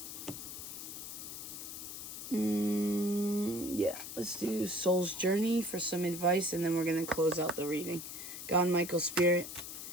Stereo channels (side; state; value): left; noise; hiss, 9 dB below the sound